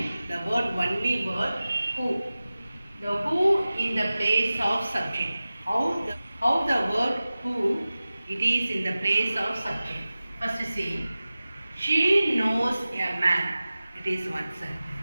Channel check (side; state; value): both; inverted; correlation -0.96